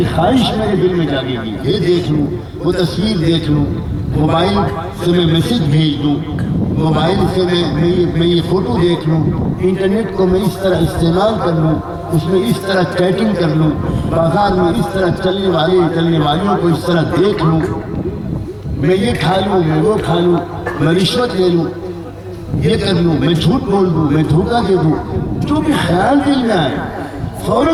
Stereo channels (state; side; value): identical; both; correlation 1.00